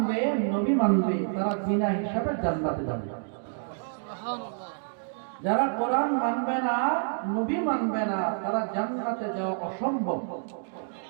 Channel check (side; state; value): left; silent; 59 dB below the other